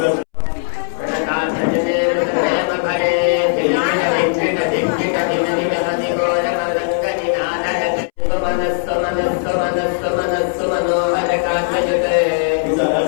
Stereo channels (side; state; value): right; silent; 68 dB below the other